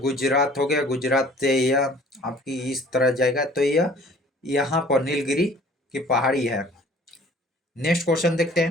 हो गया, गुजरात से यह आपकी इस तरह जाएगा, तो यह यहाँ पर नीलगिरी की पहाड़ी है। नेक्स्ट क्वेश्चन देखते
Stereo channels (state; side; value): normal; both; correlation 0.52